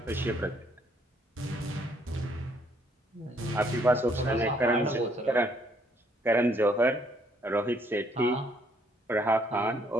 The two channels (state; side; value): normal; both; correlation 0.67